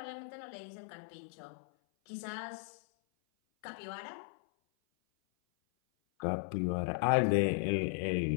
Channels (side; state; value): right; silent; 54 dB below the other